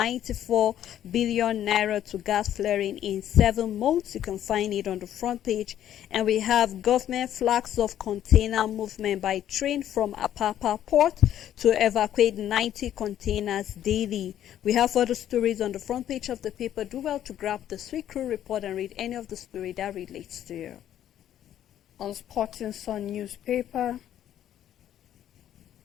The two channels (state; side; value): quieter; right; 11.2 dB